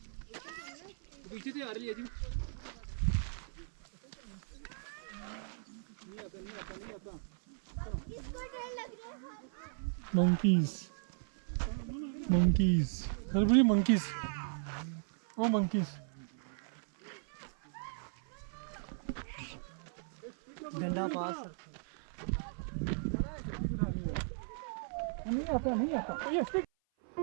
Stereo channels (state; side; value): silent; left; 53 dB below the other